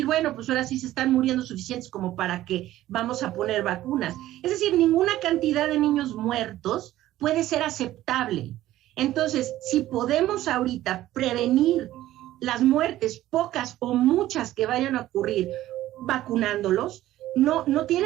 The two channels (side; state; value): left; quieter; 14.5 dB